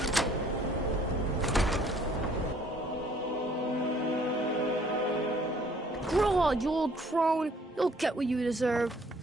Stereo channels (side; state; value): both; normal; correlation 0.59